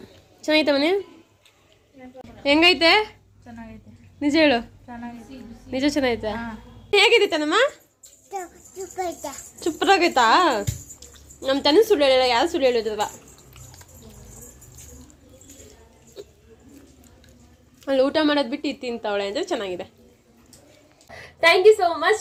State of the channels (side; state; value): both; identical; correlation 1.00